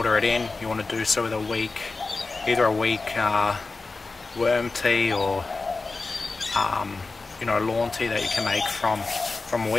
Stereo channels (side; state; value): right; quieter; 3.8 dB